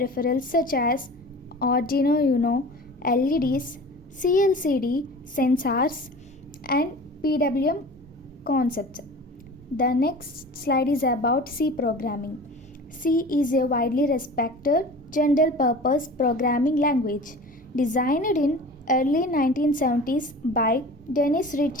such as Arduino Uno, LEDs, CLCD, sensors, and PWM concepts. The next slide is about C programming. C is a widely respected general purpose programming language designed in early 1970s by Dennis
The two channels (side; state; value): both; normal; correlation 0.39